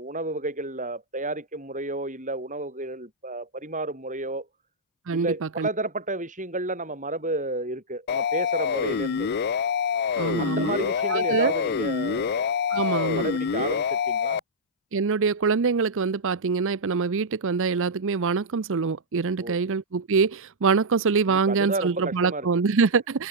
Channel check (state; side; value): normal; both; correlation -0.09